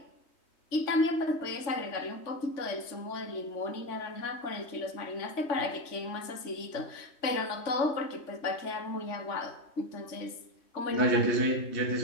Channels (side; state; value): right; late; 3.5 ms